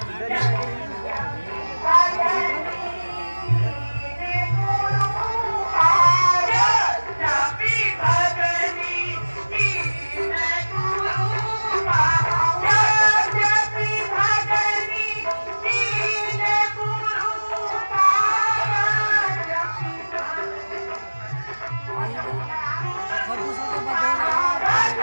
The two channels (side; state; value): both; inverted; correlation -1.00